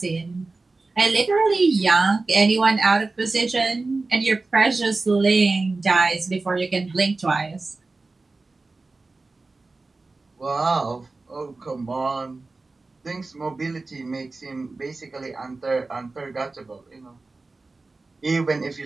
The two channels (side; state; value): left; quieter; 3.5 dB